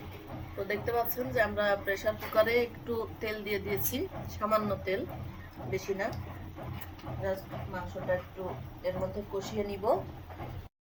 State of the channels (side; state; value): both; identical; correlation 1.00